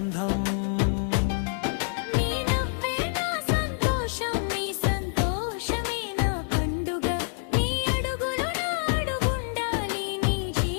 నీ నవ్వే నా సంతోషం నీ సంతోషమే నా పండుగ నీ అడుగులో నా అడుగుండాలి నీ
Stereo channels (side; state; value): right; silent; 60 dB below the other